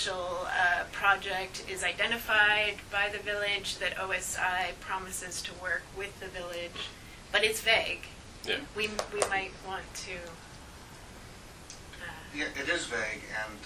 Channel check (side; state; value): both; identical; correlation 1.00